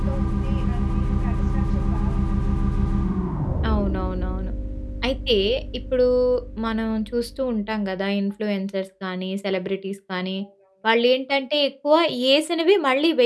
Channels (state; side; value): identical; both; correlation 1.00